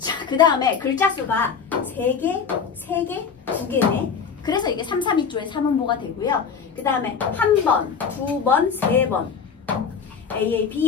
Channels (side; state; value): right; quieter; 6.3 dB